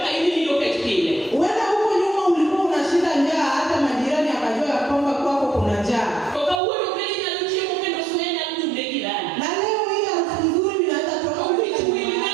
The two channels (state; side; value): drops out; left; at 6.6 s